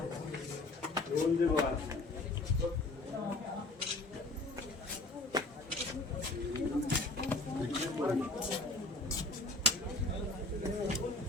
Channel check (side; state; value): right; quieter; 3.1 dB